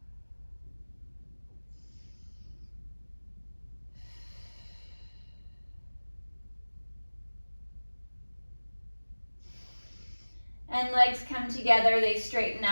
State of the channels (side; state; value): both; inverted; correlation -1.00